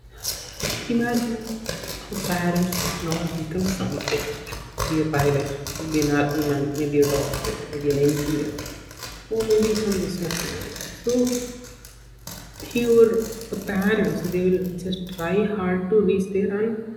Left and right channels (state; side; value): identical; both; correlation 1.00